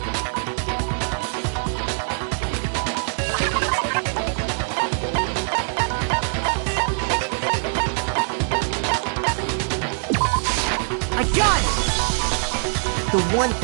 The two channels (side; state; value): left; silent; 55 dB below the other